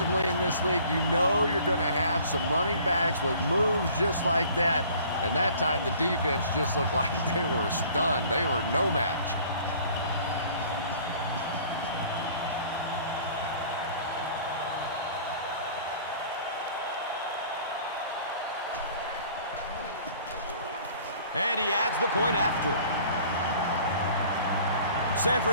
in this league, you know you're going to have some running backs with moves just like that. And that time the defense just looked like they were stunned. They were no match. And he adds the point after. San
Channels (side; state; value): both; inverted; correlation -0.51